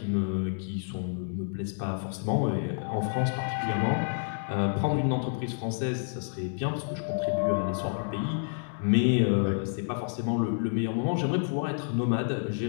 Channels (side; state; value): right; silent; digital silence